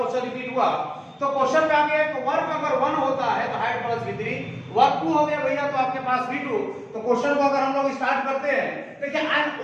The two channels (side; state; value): both; identical; correlation 1.00